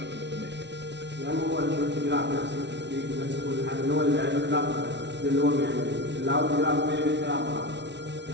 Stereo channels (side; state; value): left; late; 0.51 ms